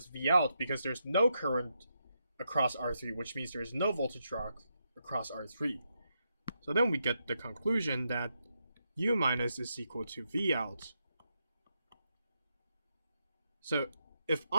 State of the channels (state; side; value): inverted; both; correlation -0.83